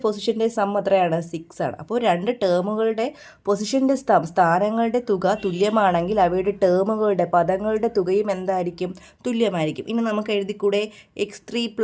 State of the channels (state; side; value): identical; both; correlation 1.00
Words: പൊസിഷൻ്റെ സം എത്രയാണ്? 6 ആണ്. അപ്പോൾ 2 ടേമുകളുടെ പൊസിഷൻ്റെ സ്ഥാനങ്ങളുടെ തുക തുല്യമാണെങ്കിൽ അവയുടെ ടേമുകളുടെ പദങ്ങളുടെ തുകയും എന്തായിരിക്കും? തുല്യമായിരിക്കും. ഇനി നമുക്ക് എഴുതിക്കൂടെ? x3